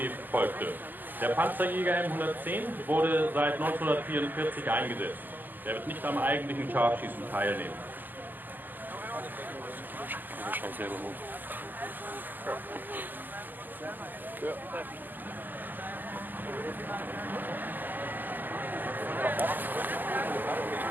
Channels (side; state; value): left; late; 0.087 ms